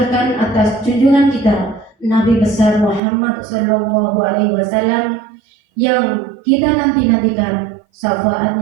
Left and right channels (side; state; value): left; drops out; at 3.0 s